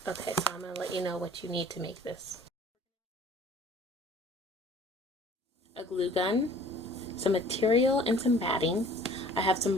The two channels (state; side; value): normal; both; correlation 0.50